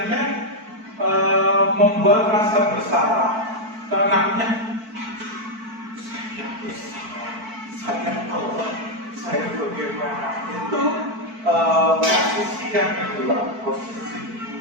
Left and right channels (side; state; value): left; late; 4.5 ms